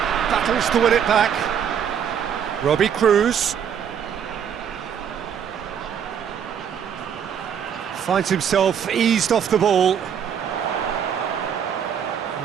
Battles to win it back. Robbie Cruz. Finds himself eased off the ball.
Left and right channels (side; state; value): left; quieter; 8.2 dB